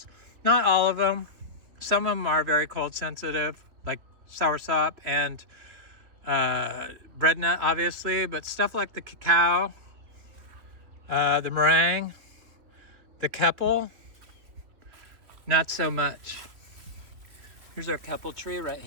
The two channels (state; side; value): late; left; 3.2 ms